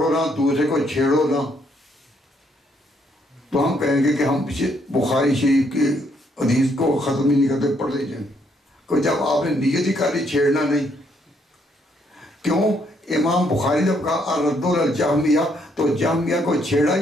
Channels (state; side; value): normal; both; correlation 0.71